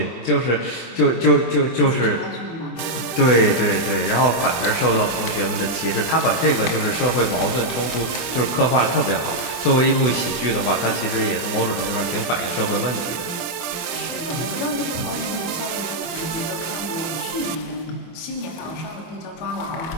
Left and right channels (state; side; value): late; right; 24 ms